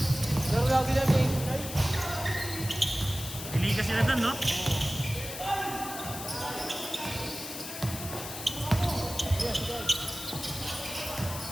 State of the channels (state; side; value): noise; left; hiss, 9 dB below the sound